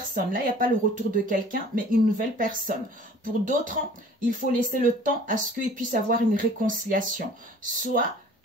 Là, il n'y a pas le retour de quelqu'un, mais une nouvelle personne. Pour d'autres, il faut laisser le temps à ce qu'ils puissent avoir une réconciliation. Soit,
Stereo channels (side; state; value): both; normal; correlation 0.49